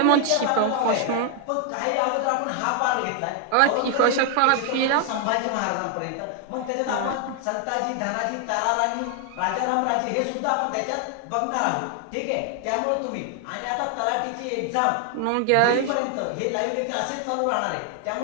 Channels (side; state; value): both; different; correlation 0.00